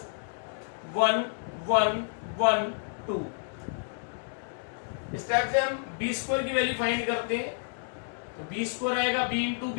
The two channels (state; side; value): silent; right; digital silence